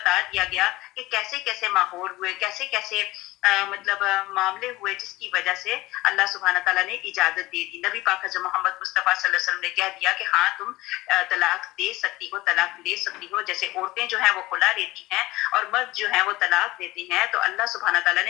دیا گیا کہ کیسے کیسے ماحول ہوئے، کیسے کیسے معاملے ہوئے جس کی وجہ سے اللہ سبحانہ تعالیٰ نے اجازت دے دی۔ نبی پاک حضرت محمد مصطفیٰ صلی اللہ علیہ وسلم نے کہہ دیا کہ ہاں تم طلاق دے سکتی ہو، طلاق لے سکتی ہو۔ جیسے عورتیں جو ہیں وہ خلا لیتی ہیں اور مرد جو ہیں وہ طلاق دیتے ہیں، تو اللہ سبحانہ تعالیٰ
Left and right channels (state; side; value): quieter; right; 19.0 dB